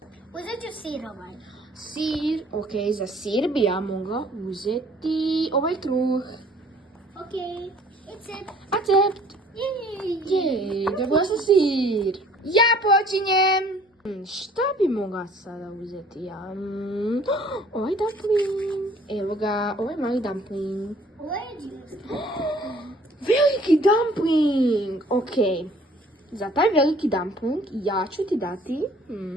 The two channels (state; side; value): normal; both; correlation 0.55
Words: Uzet ću sirovaj. Sir, ok, za sir bi ja mogla uzeti ovaj kruh. Ok, recept. Accept. Jej, dobila sam sir. Ja počinjem. Šta bi mogla sada uzeti ja? Ovaj dumpling. Evo ga, ovaj mali dumpling. Ovo je džinski. Veliki dumpling! Ok, za taj veliki dumpling ja ću ti dati...